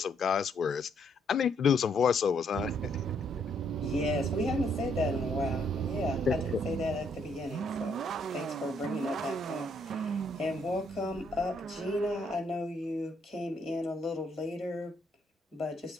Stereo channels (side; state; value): both; normal; correlation 0.71